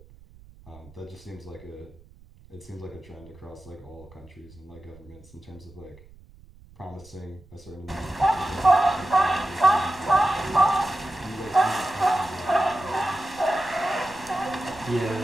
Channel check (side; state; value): right; noise; rumble, 23 dB below the sound